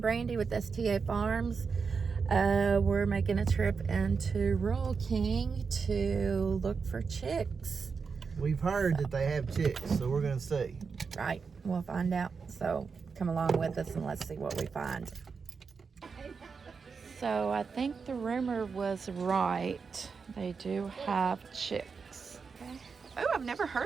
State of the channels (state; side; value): quieter; left; 5.3 dB